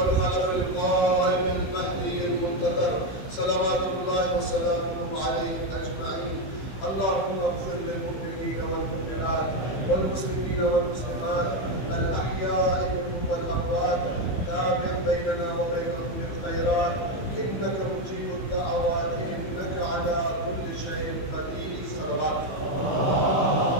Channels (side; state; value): right; late; 15 ms